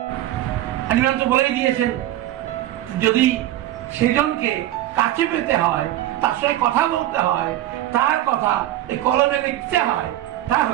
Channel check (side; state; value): left; quieter; 14.0 dB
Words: একজন তো বলেই দিয়েছেন, যদি সেজনকে কাছে পেতে হয়, তার সাথে কথা বলতে হয়, তার কথা এই কলমে লিখতে হয়,